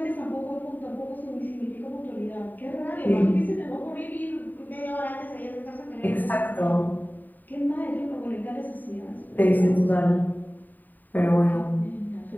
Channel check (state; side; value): late; right; 0.087 ms